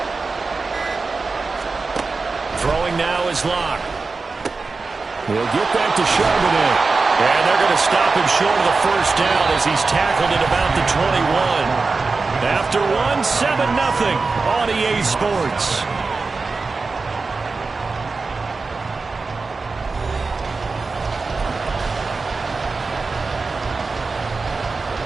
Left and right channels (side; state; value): left; quieter; 4.1 dB